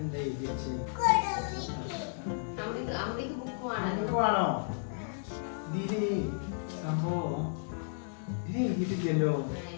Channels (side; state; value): right; silent; digital silence